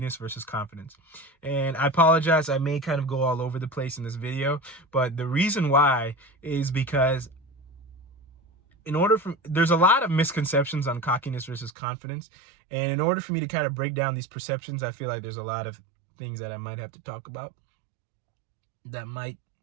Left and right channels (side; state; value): left; drops out; at 11.7 s